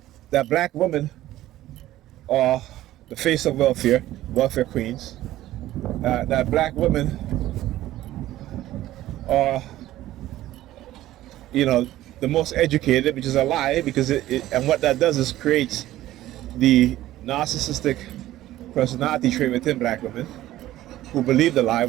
that black women are the face of welfare queens, that black women are, the most educated, which is a lie, because and what that does is creates the narcissistic personality trait within black women who believe the lie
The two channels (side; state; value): left; quieter; 14.7 dB